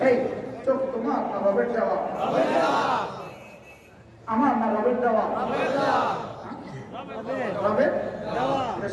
এই চোখ তোমার না রবের দেওয়া? আমার না রবের দেওয়া? রবের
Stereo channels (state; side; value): identical; both; correlation 1.00